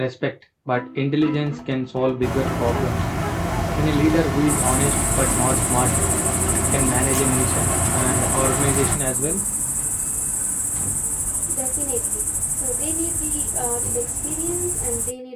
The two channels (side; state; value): both; identical; correlation 1.00